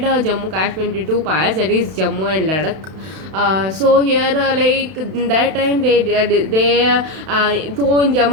Jammu Kashmir into two parts, that is Jammu and Ladakh. So here like in that time so in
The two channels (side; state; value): left; late; 32 ms